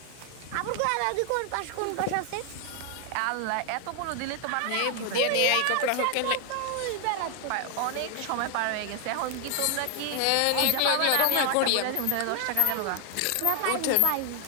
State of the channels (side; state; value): both; different; correlation 0.00